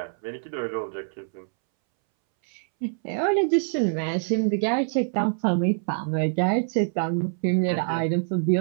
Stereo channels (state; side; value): silent; left; 62 dB below the other